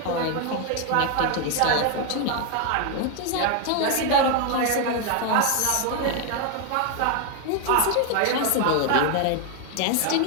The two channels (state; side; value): different; both; correlation 0.01